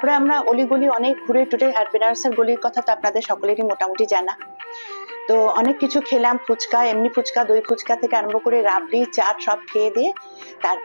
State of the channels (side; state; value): both; inverted; correlation -1.00